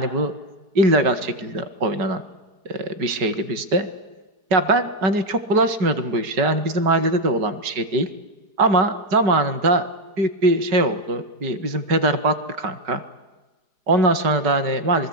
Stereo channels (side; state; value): left; late; 4.8 ms